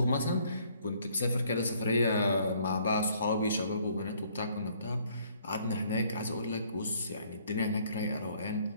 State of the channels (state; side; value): inverted; both; correlation -0.63